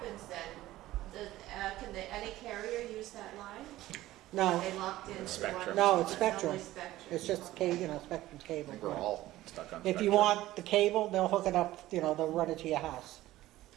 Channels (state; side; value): quieter; left; 15.8 dB